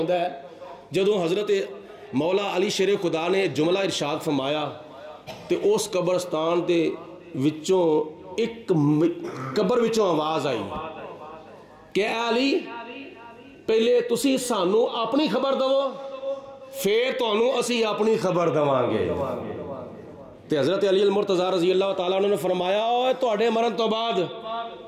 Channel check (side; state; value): both; identical; correlation 1.00